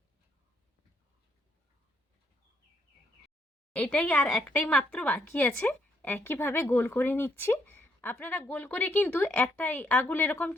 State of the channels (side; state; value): both; normal; correlation 0.73